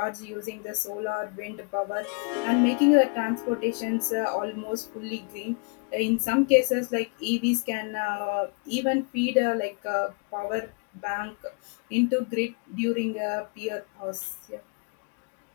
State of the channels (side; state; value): right; quieter; 35.1 dB